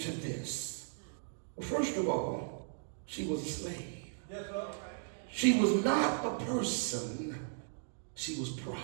to this? Well, first of all, she was a slave. She was not a person, she was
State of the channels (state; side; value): silent; left; digital silence